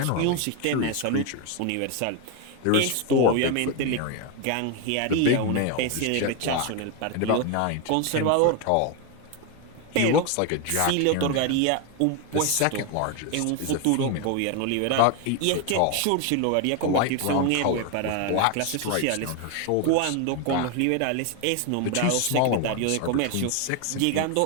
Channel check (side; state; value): both; different; correlation 0.01